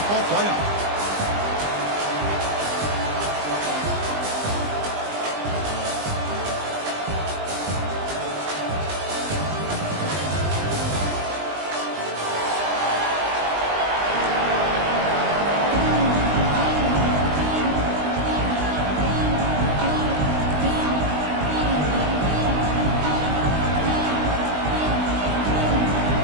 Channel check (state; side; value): late; left; 20 ms